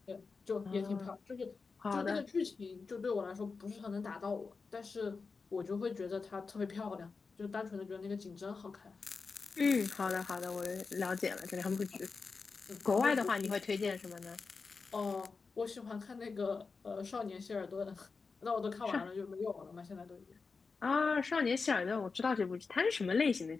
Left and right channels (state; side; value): quieter; right; 4.6 dB